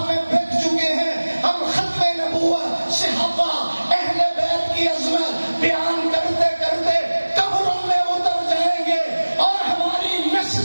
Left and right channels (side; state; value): both; inverted; correlation -1.00